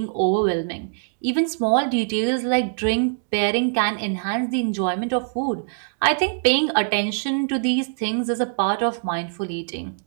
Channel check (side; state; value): left; silent; digital silence